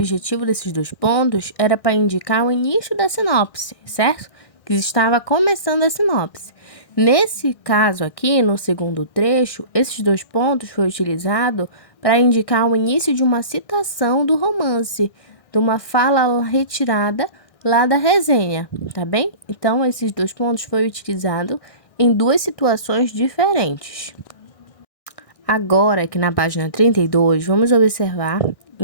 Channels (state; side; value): late; right; 1.6 ms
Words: desses dois pontos era para indicar o início da sinopse, certo? Que estava começando a sinopse. Nesse caso aqui, no segundo trecho, esses dois pontos foram utilizados para indicar o início de uma citação do romance, de uma fala retirada lá da resenha, tá bem? Então, esses dois pontos foram utilizados em duas situações diferentes. Agora, aqui na página 32, vamos observar